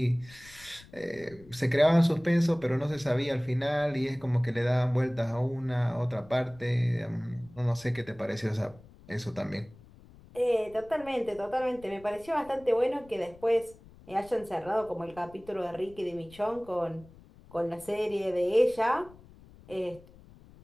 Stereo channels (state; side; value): noise; left; rumble, 22 dB below the sound